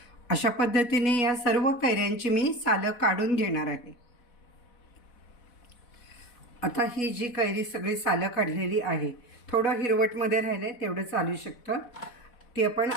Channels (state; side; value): late; right; 4.1 ms